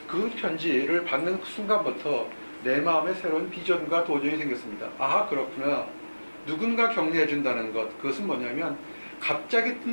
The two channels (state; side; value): inverted; both; correlation -1.00